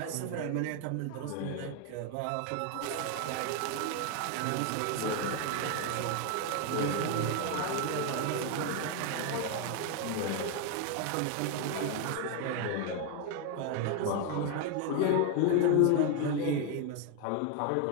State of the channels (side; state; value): both; different; correlation 0.01